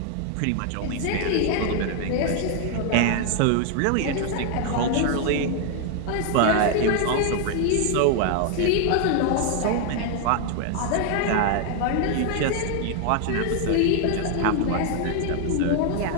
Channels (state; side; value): different; both; correlation 0.00